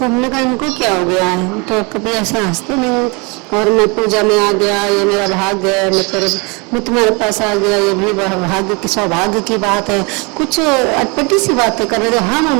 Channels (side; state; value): left; quieter; 29.7 dB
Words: हमने कहा इनको क्या हो गया है, तो कभी ऐसे हंसते नहीं। और मैं पूजा में आ गया, ये मेरा भाग्य है, मैं तुम्हारे पास आ गया, ये भी भाग्य की सौभाग्य की बात है। कुछ अटपटी सी बातें कर रहे थे। हम